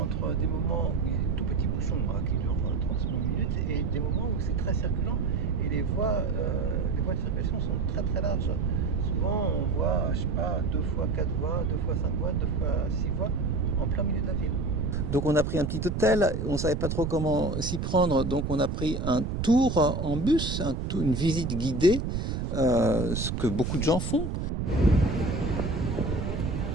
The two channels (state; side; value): noise; right; rumble, 2 dB below the sound